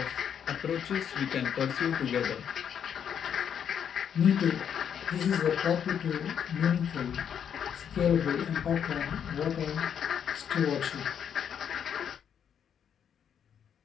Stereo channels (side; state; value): right; quieter; 8.3 dB